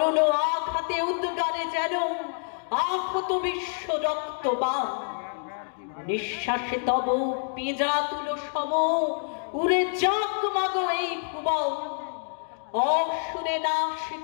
আঘাতে উদ্গারে যেন আহত বিশ্ব রক্তবান। নিঃশ্বাসে তব পেঁজা তুলো সম, উড়ে যাক মাগো এই ভুবন। অসুরে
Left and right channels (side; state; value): right; silent; digital silence